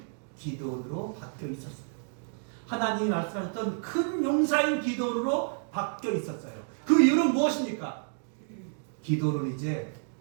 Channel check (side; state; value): left; silent; 58 dB below the other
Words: 기드온으로 바뀌어 있었어요. 하나님이 말씀하셨던 큰 용사인 기드온으로 바뀌어 있었어요. 그 이유는 무엇입니까? 기드온은 이제